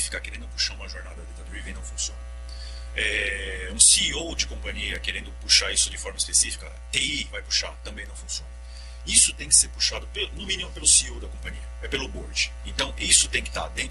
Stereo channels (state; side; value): identical; both; correlation 1.00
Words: querendo puxar uma jornada data-driven não funciona. Um CEO de companhia querendo puxar isso de forma específica, TI vai puxar, também não funciona. Isso tem que ser puxado, no mínimo, pelo CEO da companhia, pelo board. Então, isso tem que estar